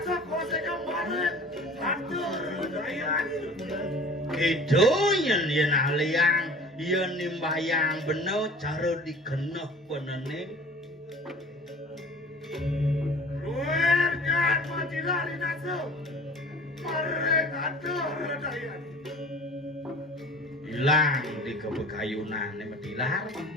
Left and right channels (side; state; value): both; normal; correlation 0.43